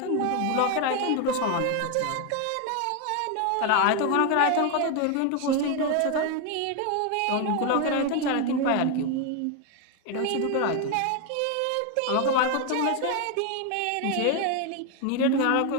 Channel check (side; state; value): both; different; correlation 0.01